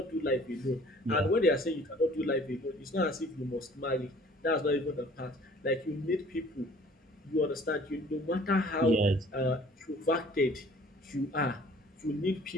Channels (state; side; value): normal; both; correlation 0.52